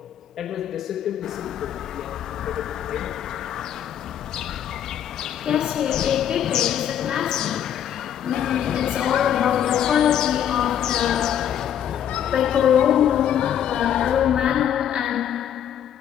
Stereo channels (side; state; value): right; quieter; 9.9 dB